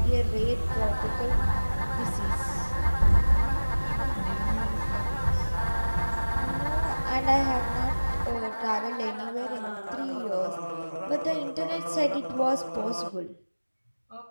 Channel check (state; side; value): inverted; both; correlation -1.00